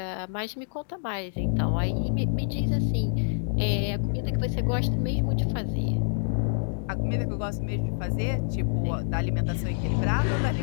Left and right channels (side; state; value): right; silent; digital silence